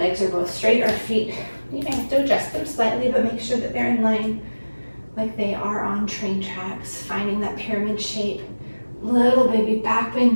are both straight. Our feet, you may have to adjust them slightly, but make sure that they're in line like they are on train tracks. Finding that pyramid shape. Little baby back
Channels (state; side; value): inverted; both; correlation -1.00